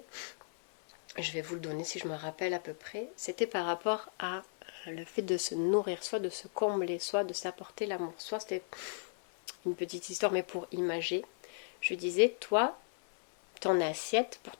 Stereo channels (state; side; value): silent; right; 54 dB below the other